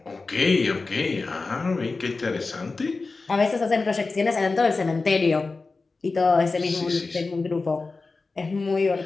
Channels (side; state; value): right; quieter; 3.9 dB